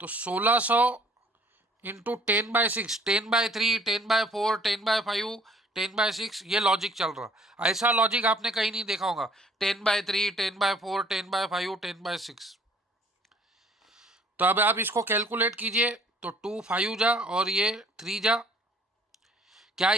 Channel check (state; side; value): normal; both; correlation 0.56